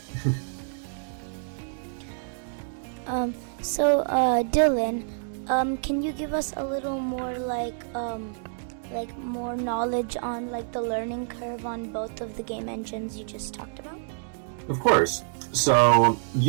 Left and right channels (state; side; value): silent; left; digital silence